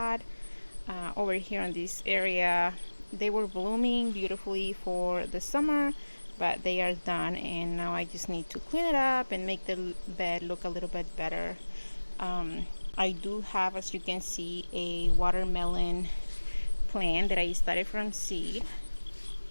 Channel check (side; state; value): both; inverted; correlation -1.00